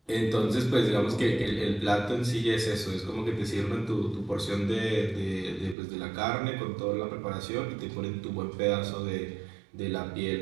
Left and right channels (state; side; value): drops out; left; at 5.8 s